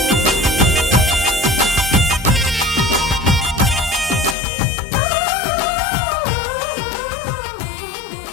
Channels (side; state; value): right; drops out; at 4.4 s